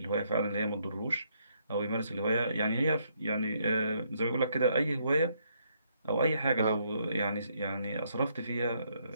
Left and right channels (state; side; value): inverted; both; correlation -0.72